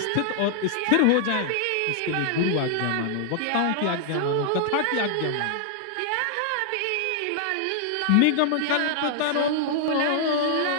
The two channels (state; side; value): different; both; correlation 0.00